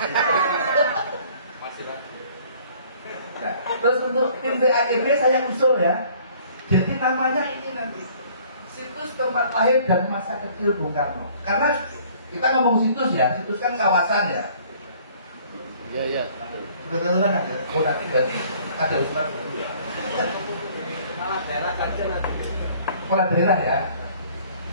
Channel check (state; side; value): inverted; both; correlation -0.56